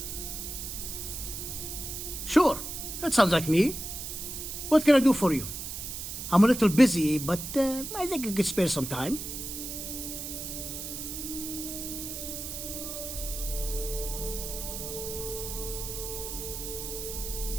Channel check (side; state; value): right; noise; hiss, 7 dB below the sound